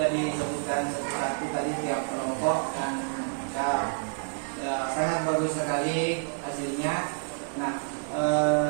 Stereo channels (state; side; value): silent; left; digital silence